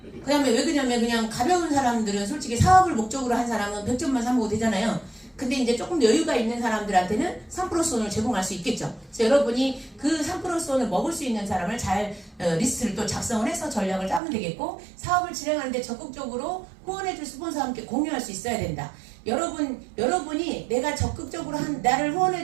그 다음에 왜 그러냐면 그냥 가벼운 사람들은 솔직히 사업을 목적으로 한 사람은 100점만 사먹어도 되잖아요. 근데 이제 조금 여유가 있는 사람들한테는 3%손을 제공할 수 있겠죠. 그래서 여러분이 그 3%손을 먹을 수 있는 사람을 잘 리스트를 또 작성을 해서 전략을 짜면 되겠고, 사업을 진행하는데 적극적으로 후원해줄 스폰서와 함께 공유할 수 있어야 된다. 여러분이 내가 적극적으로 나를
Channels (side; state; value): left; drops out; at 14.2 s